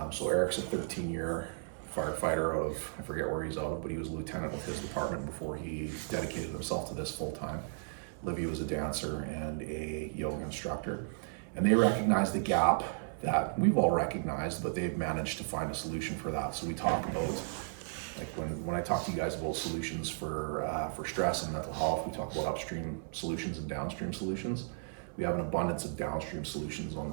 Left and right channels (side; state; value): left; silent; 55 dB below the other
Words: So Eric's a 13-year firefighter out of, I forget where he's out of, but he was a lieutenant with his department before he dedicated himself to this full time. Olivia was a dancer and a yoga instructor. And they recognized the gap that we've all recognized, but they've managed to find a solution for that. So we talk about, like when I talk to you guys about solutions for stress and mental health, we talk about upstream solutions and downstream solutions. We have an abundance of downstream solutions on